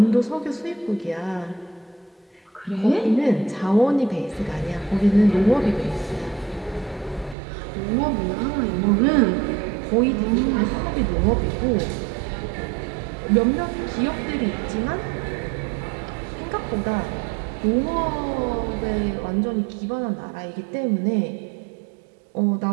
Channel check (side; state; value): left; drops out; at 7.4 s